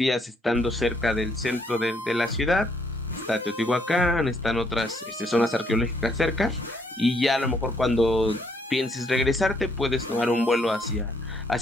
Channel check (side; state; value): both; normal; correlation 0.69